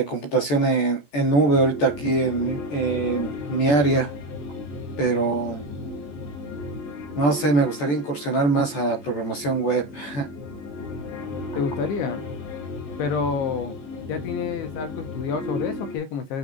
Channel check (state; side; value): late; right; 14 ms